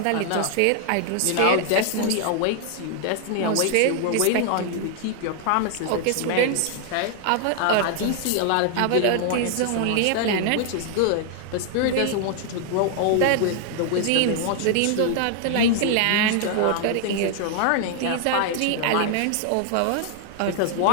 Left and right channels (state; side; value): different; both; correlation 0.00